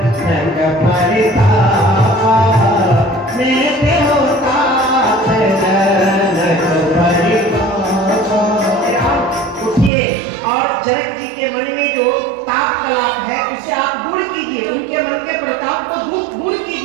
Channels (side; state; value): left; drops out; at 9.9 s